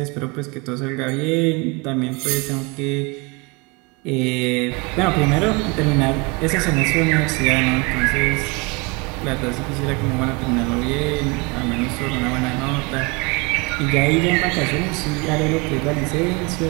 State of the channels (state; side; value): quieter; left; 27.7 dB